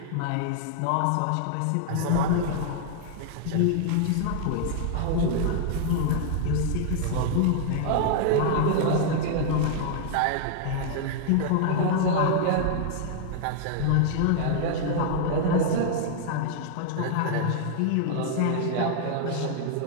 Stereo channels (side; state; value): both; different; correlation -0.01